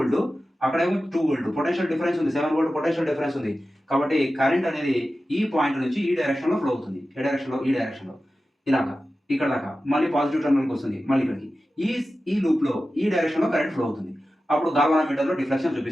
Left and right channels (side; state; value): both; normal; correlation 0.94